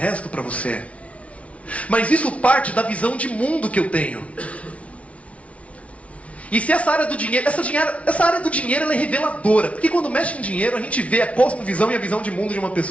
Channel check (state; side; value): late; right; 0.064 ms